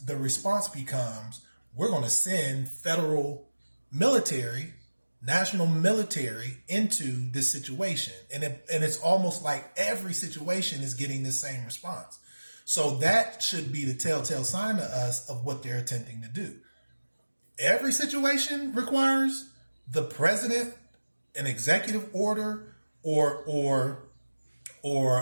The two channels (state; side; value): inverted; both; correlation -1.00